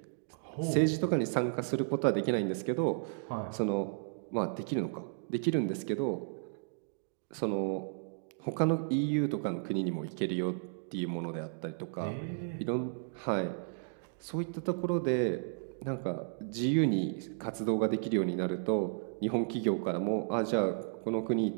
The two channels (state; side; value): silent; left; digital silence